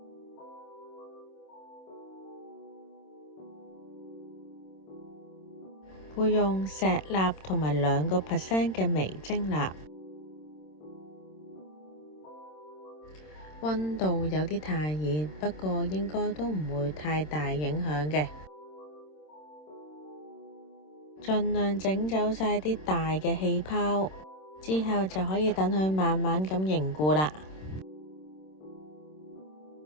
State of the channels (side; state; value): right; late; 26 ms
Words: 會用石蠟同埋2% 嘅微晶蠟，溫度有啲太熱，不過應該都唔會太大影響嘅。盡量整走晒啲大嘅氣泡，之後就可以等佢慢慢咁凝固啦。